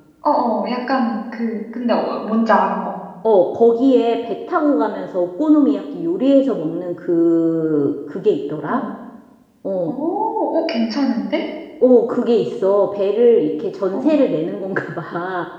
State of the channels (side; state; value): both; identical; correlation 1.00